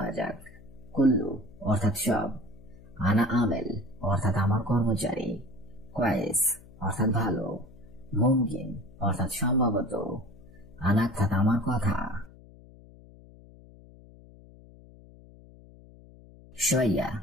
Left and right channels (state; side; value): noise; left; hum, 21 dB below the sound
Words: যাক। কুল্লু অর্থাৎ সব, আনা আমেল অর্থাৎ আমার কর্মচারী, কয়েস অর্থাৎ ভালো, মুমকিন অর্থাৎ সম্ভবত, আনা অর্থাৎ আমার কথা। শোয়া